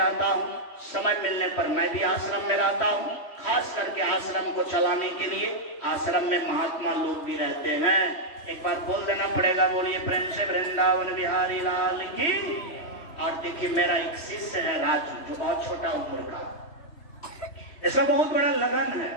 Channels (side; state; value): right; late; 3.1 ms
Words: हूँ। समय मिलने पर मैं भी आश्रम में रहता हूँ। खास करके आश्रम को चलाने के लिए आश्रम में महात्मा लोग भी रहते हैं। एक बार बोल देना पड़ेगा, बोलिए प्रेम से वृंदावन बिहारी लाल की। और देखिए मेरा एक शिष्य है राजू, जो बहुत छोटा उम्र का, इसका बहुत बड़ा लगन है